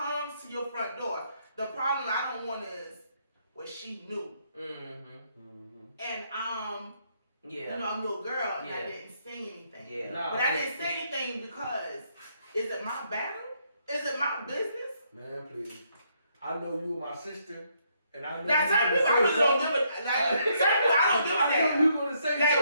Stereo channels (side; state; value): both; inverted; correlation -0.73